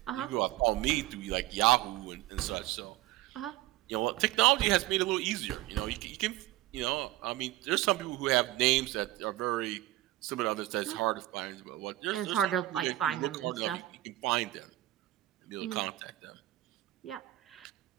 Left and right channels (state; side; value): quieter; left; 16.7 dB